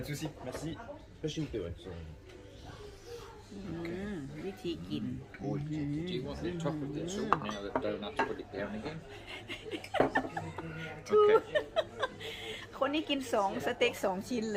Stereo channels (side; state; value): both; identical; correlation 1.00